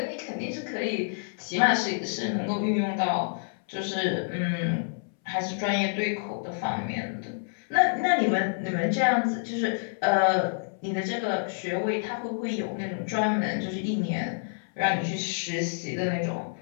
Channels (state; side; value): silent; right; 59 dB below the other